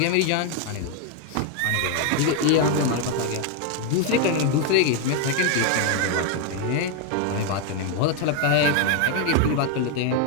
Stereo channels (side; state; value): both; different; correlation 0.01